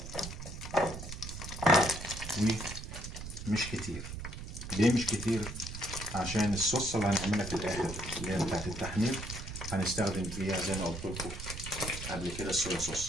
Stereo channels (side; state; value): right; noise; rumble, 8 dB below the sound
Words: ومش كتير. ليه مش كتير؟ عشان الصوص اللي هنعملها في الاخر اللي هي بتاعت التحمير هنستخدم فيها زي ما قلت لكم قبل كده الصويا